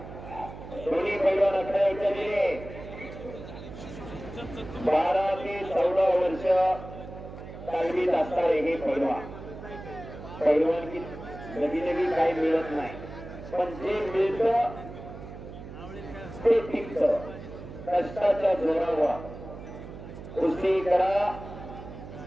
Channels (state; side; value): noise; right; hum, 13 dB below the sound